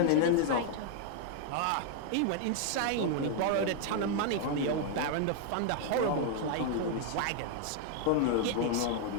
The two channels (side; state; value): both; different; correlation 0.00